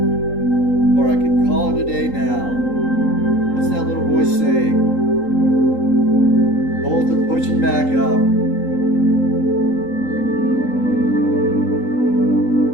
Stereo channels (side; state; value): right; late; 3.8 ms